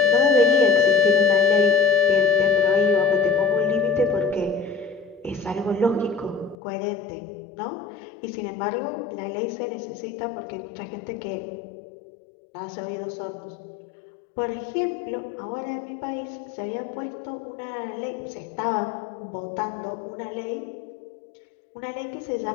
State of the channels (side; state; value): right; drops out; at 6.6 s